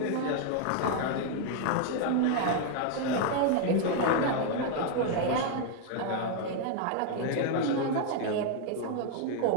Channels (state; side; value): different; both; correlation 0.00